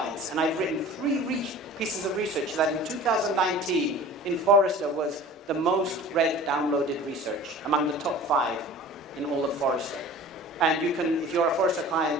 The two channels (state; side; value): normal; both; correlation 0.41